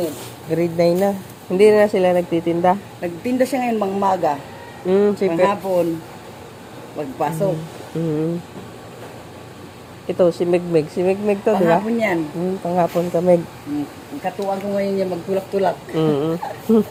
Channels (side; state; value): both; identical; correlation 1.00